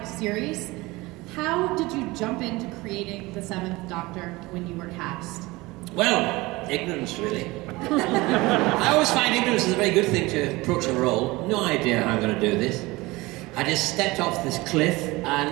series. How did you jump into creating the 7th Doctor when you were cast? Well, ignorance, really. I always find ignorance is a very good thing to approach a role. No idea how I'm going to do this. I just stepped off this cliff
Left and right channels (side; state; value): left; quieter; 21.6 dB